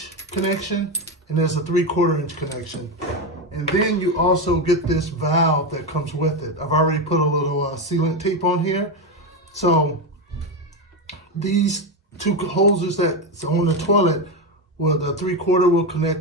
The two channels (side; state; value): both; normal; correlation 0.12